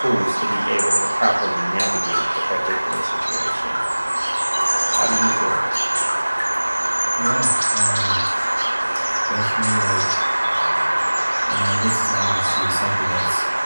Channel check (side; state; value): both; inverted; correlation -1.00